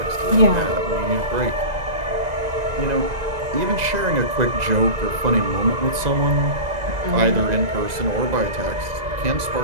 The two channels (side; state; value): left; late; 2.0 ms